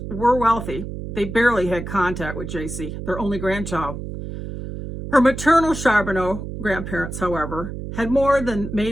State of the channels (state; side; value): noise; right; hum, 8 dB below the sound